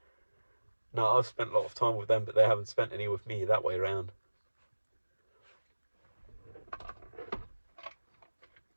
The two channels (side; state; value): both; inverted; correlation -1.00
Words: No, I've spent a lot of time with them, but they haven't spent any with me, that way around.